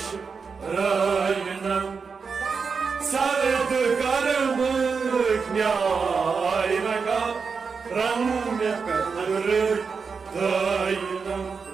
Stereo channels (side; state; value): left; quieter; 5.3 dB